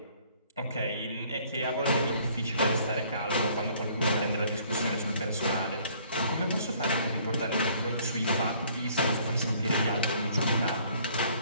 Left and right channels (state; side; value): inverted; both; correlation -0.60